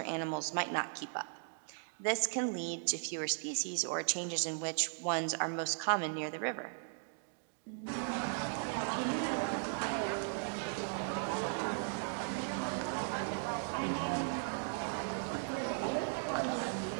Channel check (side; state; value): left; silent; digital silence